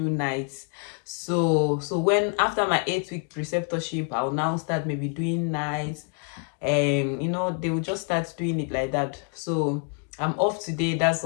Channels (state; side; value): quieter; right; 38.5 dB